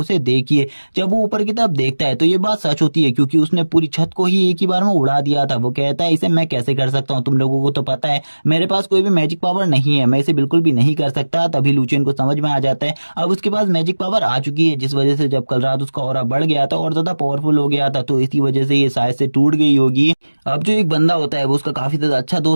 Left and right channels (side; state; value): both; inverted; correlation -1.00